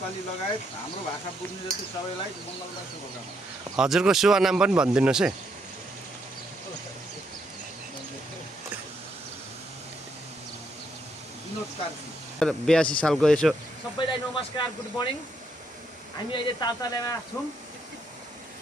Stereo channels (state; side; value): normal; both; correlation 0.76